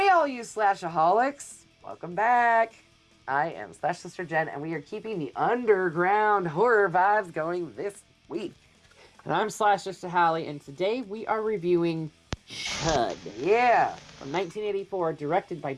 all you Slashaholics! Welcome back. I am Slash Sister Jen, and we are keeping the underground horror vibes going this week. And I'm Slash Sister Hallie, and today we are reviewing C.H.U.D. Yeah, from 1984, directed by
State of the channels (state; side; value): identical; both; correlation 1.00